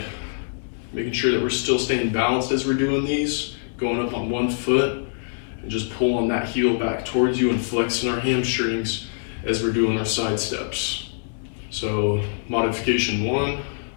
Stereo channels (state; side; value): silent; right; digital silence